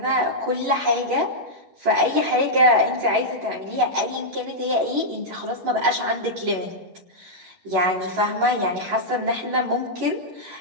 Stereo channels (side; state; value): left; late; 11 ms